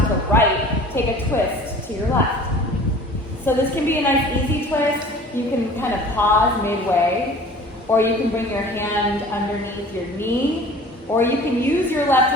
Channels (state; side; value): normal; both; correlation 0.45